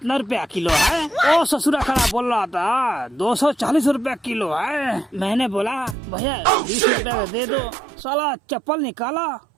रुपया किलो है? ओ ससुरा खड़ा बोल रहा था 240 रुपया किलो है। मैंने बोला भैया 20 रुपया दे दो। साला चप्पल निकाला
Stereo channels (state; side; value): drops out; left; at 6.0 s